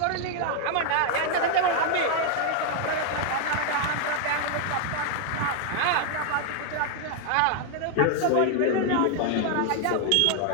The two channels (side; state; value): both; different; correlation 0.00